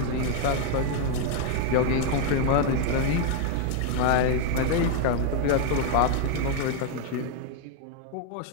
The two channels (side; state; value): both; different; correlation 0.00